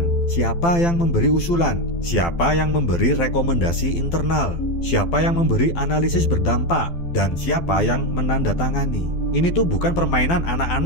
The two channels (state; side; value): late; right; 12 ms